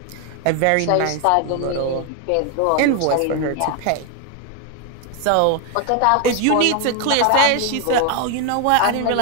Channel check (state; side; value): different; both; correlation 0.01